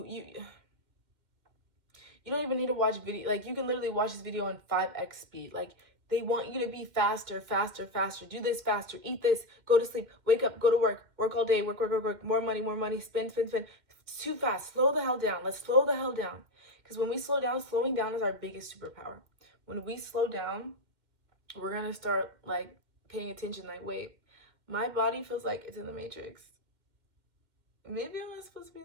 don't even need to watch video. Like, you can literally watch this video in 5x speed. Like, they want you to be faster, faster, faster. Do this faster. Eat this. Go to sleep. Wake up. Go to work. Work all day. Work, work, work, work. More money, more money. Spend, spend, spend. It's too fast. Slow the hell down. Let's slow the hell down. Because when we slow down, slowing down is our biggest superpower. When we slow down, we're going to start, like, paying attention. Like, wait, my body feels like it's in the Matrix. Maybe I'm not supposed to be in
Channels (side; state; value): left; late; 2.1 ms